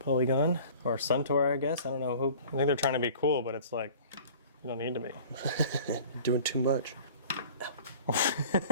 Or Suntour, I guess? I don't know who. I think they're trying to be cool, but it's like, you don't need to be. You're doing too much.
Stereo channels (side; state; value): both; inverted; correlation -0.46